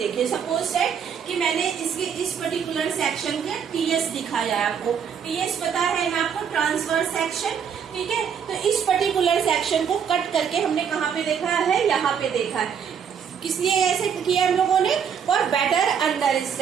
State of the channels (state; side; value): quieter; left; 7.5 dB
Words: सपोज दैट कि मैंने इसके इस पर्टिकुलर सेक्शन का टीएस दिखाया है आपको। टीएस पता है ना आपको? Transverse section. ठीक है, तो इस पर्टिकुलर सेक्शन को कट करके हमने कहाँ पे देखा है? यहाँ पे देखा है। किस लिए ऐसे किया हम लोगों ने? For better